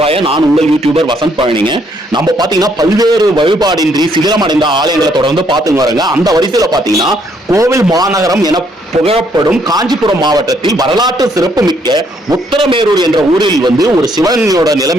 நான் உங்கள் யூடியூபர் வசந்த் பழனிங்க. நம்ம பாத்தீங்கன்னா பல்வேறு வழிபாடின்றி சிதிலமடைந்த ஆலயங்களை தொடர்ந்து பார்த்துங்க வரங்க. அந்த வரிசையில பாத்தீங்கன்னா கோவில் மாநகரம் என புகழப்படும் காஞ்சிபுரம் மாவட்டத்தில் வரலாற்று சிறப்பு மிக்க உத்தரமேரூர் என்ற ஊரில் ஒரு சிவனோட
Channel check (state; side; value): normal; both; correlation 0.70